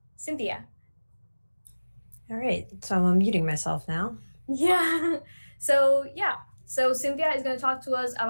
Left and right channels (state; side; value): inverted; both; correlation -1.00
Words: Cynthia. All right, so I'm muting myself now. Yeah. So Cynthia is going to talk to us